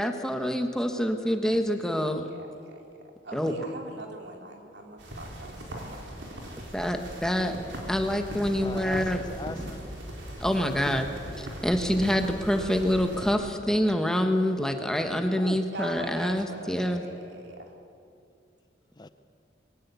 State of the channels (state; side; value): normal; both; correlation 0.85